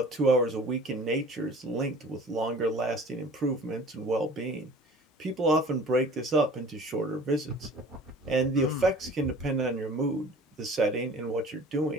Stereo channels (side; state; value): both; normal; correlation 0.45